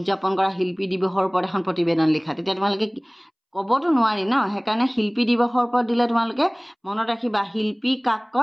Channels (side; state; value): both; identical; correlation 1.00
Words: কৰা শিল্পী দিৱসৰ ওপৰত এখন প্ৰতিবেদন লিখা তেতিয়া তোমালোকে ক'বতো নোৱাৰি সেইকাৰণে শিল্পী দিৱসৰ ওপৰত দিলে তোমালোকে মনত ৰাখিবা শিল্পী কাক